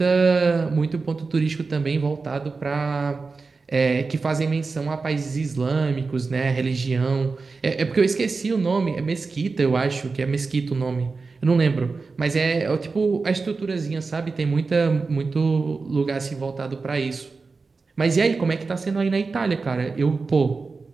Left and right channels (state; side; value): quieter; left; 4.2 dB